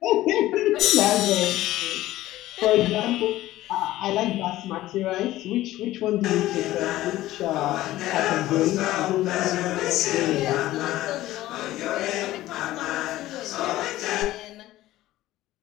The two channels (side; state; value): right; quieter; 15.7 dB